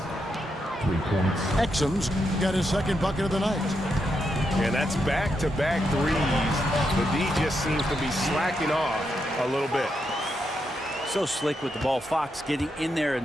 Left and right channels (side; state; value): both; normal; correlation 0.82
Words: 3 points. Exum's got his second bucket of the night. And that's back-to-back threes. The D just seems to be slacking off a little bit. So slick with the ball. Fox getting in there